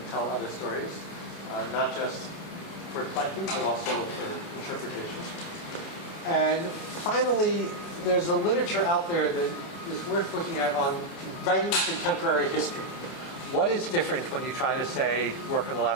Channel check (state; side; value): late; right; 29 ms